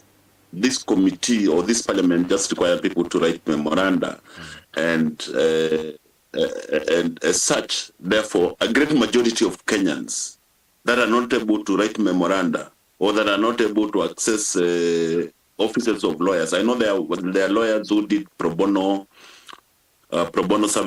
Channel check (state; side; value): identical; both; correlation 1.00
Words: committee or this parliament just require people to write memoranda, and as such, therefore, a great majority of Kenyans that are not able to write memoranda or that are not able to access offices of lawyers. I know there are lawyers who did pro bono